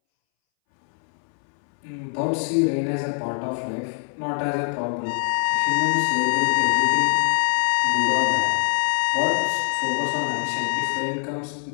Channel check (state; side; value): silent; right; 63 dB below the other